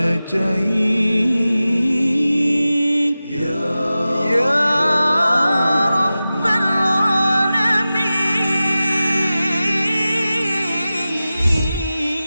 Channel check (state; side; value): inverted; both; correlation -0.95